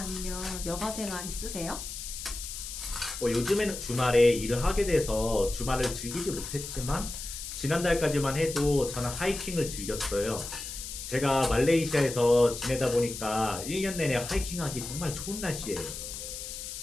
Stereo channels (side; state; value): left; noise; hiss, 8 dB below the sound